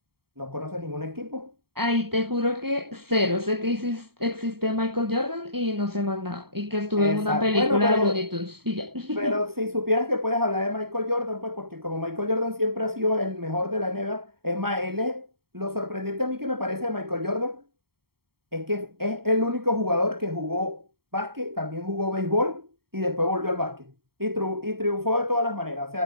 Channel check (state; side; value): late; left; 0.95 ms